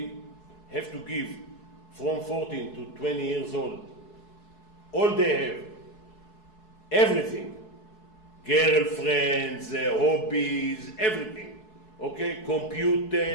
have to give from 14 to 20 years old all they have, everything, girlfriends, hobbies, everything. Okay,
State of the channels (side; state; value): right; late; 4.7 ms